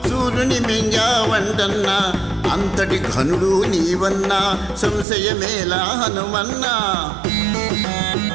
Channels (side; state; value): left; drops out; at 5.1 s